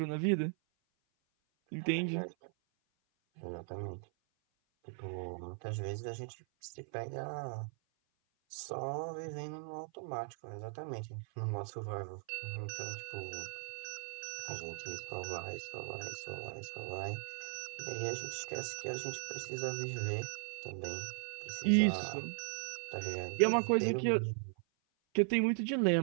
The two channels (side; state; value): left; silent; 52 dB below the other